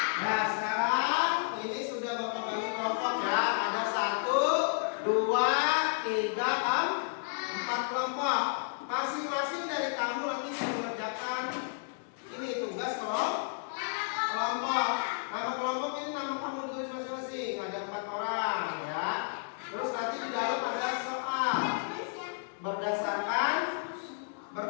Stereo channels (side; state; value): right; silent; digital silence